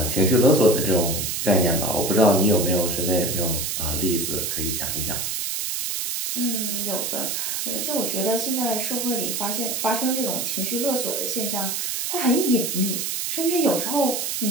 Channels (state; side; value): noise; right; hiss, 2 dB below the sound